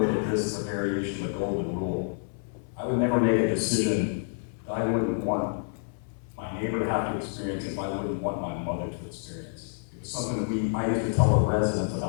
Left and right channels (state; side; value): silent; right; 59 dB below the other